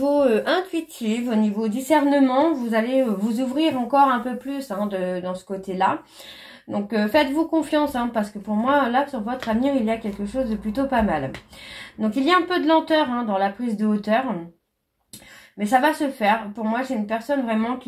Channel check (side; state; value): both; identical; correlation 1.00